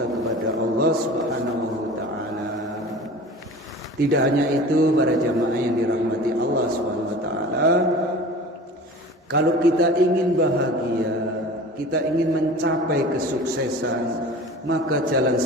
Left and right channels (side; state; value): both; normal; correlation 0.39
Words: kepada Allah Subhanahu wa taala. Tidak hanya itu para jamaah yang dirahmati Allah Subhanahu wa taala, kalau kita ingin bahagia, kita ingin mencapai kesuksesan, maka jalan